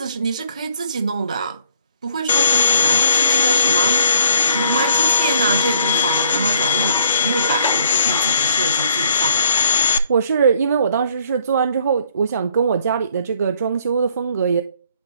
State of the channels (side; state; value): both; inverted; correlation -0.63